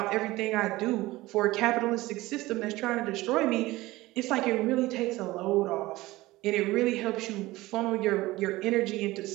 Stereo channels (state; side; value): quieter; left; 18.8 dB